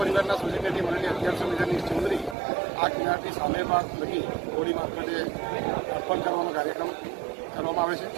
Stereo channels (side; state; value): left; drops out; at 2.4 s